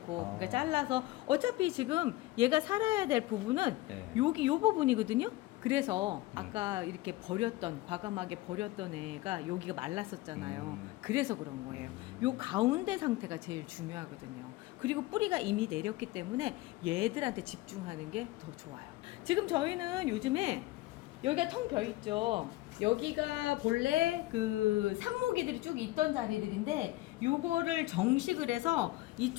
아. 그러니까 잘라서 어차피 지금 얘가 살아야 될 부분은 네. 여기 요 부분이거든요. 그래서 아까 이렇게 버렸던, 과감하게 버렸던 애가 여기가 말랐었잖아요. 그래서 그런 거예요. 요 가운데 상태가 제일 중요하거든요. 그리고 뿌리가 이미 내렸기 때문에 얘들한테 집중하는 게 더 좋아요. 지금 저희는 요즘에 여기가 텅 벼 있죠. 여기가 본래 그 삽목이들이 쭉 있던 자리들인데 요거를 정식을 해서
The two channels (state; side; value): quieter; right; 18.4 dB